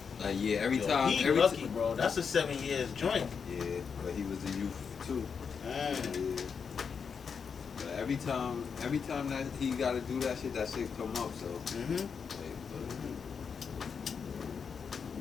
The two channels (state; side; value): quieter; right; 6.2 dB